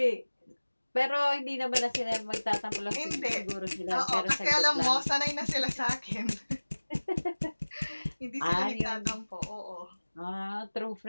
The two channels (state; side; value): inverted; both; correlation -1.00